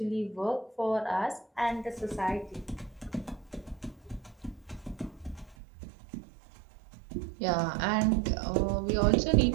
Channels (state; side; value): drops out; left; at 5.6 s